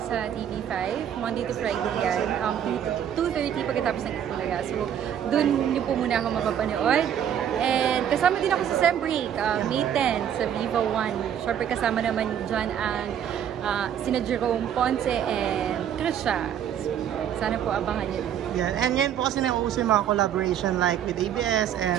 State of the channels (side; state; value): left; quieter; 9.5 dB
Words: sa TV5, Monday to Friday yan. 2:30 pagkatapos ng Itbulaga. So, dun niyo po muna ako mapapanood. And kasama din ako sa Sem Break, May 10 sa Viva 1. Siyempre kasama naman dyan ang sina Jerome Ponce and Trisha. Sana po abangan niyo. Yeah, and ngayon po kasi nauuso yung mga collaboration like with ABS